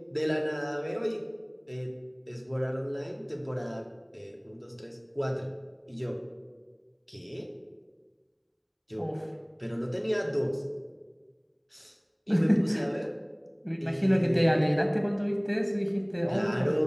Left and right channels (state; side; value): identical; both; correlation 1.00